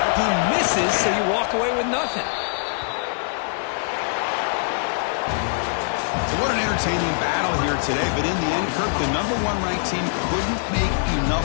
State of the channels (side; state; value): right; silent; digital silence